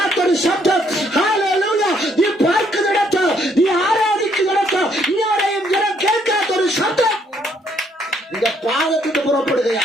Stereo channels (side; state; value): both; normal; correlation 0.69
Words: ശബ്ദം. ഹല്ലേലൂയ. നീ പാർക്കുന്നിടത്ത്, നീ ആരാധിക്കുന്നിടത്ത് ഇതുവരെയും ജനം കേൾക്കാത്തൊരു ശബ്ദം നിന്റെ പാദത്തിന്